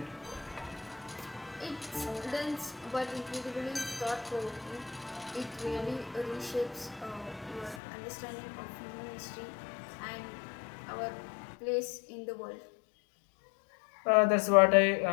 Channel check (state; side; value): drops out; right; at 7.8 s